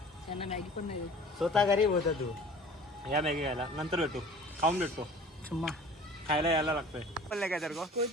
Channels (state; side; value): normal; both; correlation 0.45